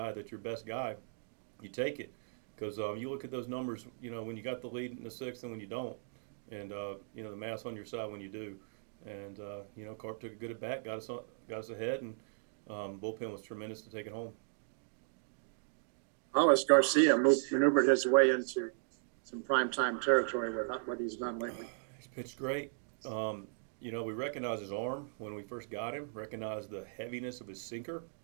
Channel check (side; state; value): left; silent; digital silence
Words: that's your best guy, you take it. Because you look at those numbers, when you got the lead in the 6th and when you don't. And the math's on your side when you do, and Carp took a good at bat, got us ahead, and bullpen was tremendous to take it home. How has Garcia maneuvered his way into some primetime territory with what he's done lately? He's pitched great. We recognized his arm when we first got him. Recognized the heaviness of his sinker.